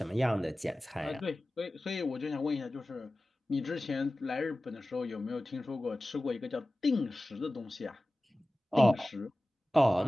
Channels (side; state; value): both; normal; correlation 0.96